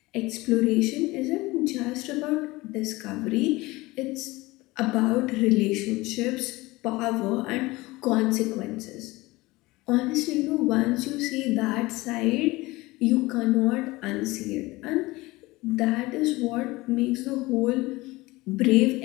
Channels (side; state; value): right; quieter; 20.9 dB